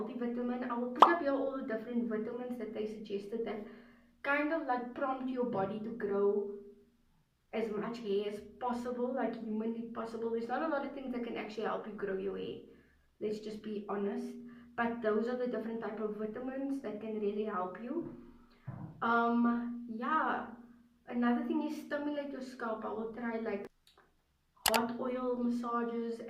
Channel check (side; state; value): both; identical; correlation 1.00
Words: I will put up here all the different vitamins that they suggested that kind of like prompt your body to grow as much hair as possible, like humanly possible. There's not a lot of things that can actually help you grow your hair, let's just be honest, but those are the different type of vitamins that can really help you. Yeah, another thing is stimulate your scalp. I will try like hot oil massages,